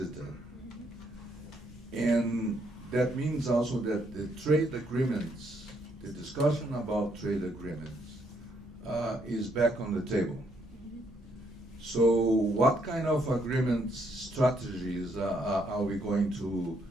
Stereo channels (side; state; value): both; normal; correlation 0.72